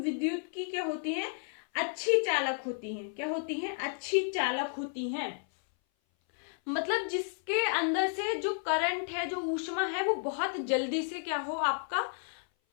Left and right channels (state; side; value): silent; right; 56 dB below the other